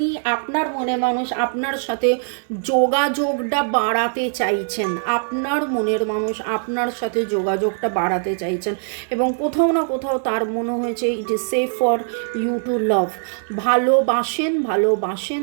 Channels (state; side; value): silent; left; 64 dB below the other